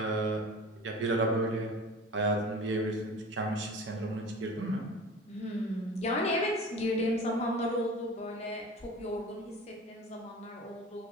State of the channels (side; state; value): both; normal; correlation 0.37